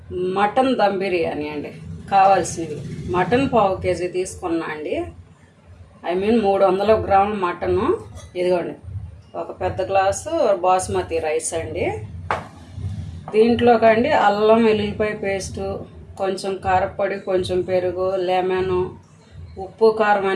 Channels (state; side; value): identical; both; correlation 1.00